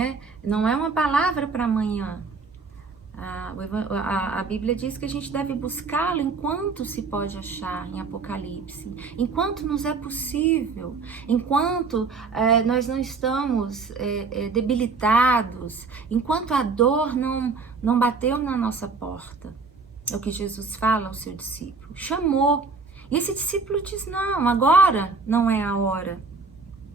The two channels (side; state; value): left; quieter; 4.4 dB